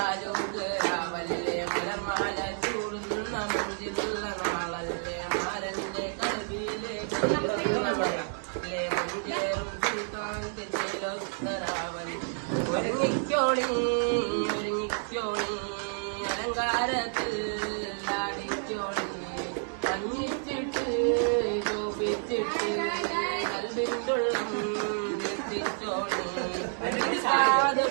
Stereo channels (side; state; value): left; silent; 58 dB below the other